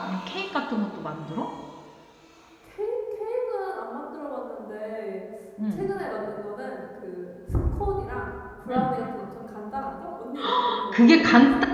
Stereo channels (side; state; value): both; identical; correlation 1.00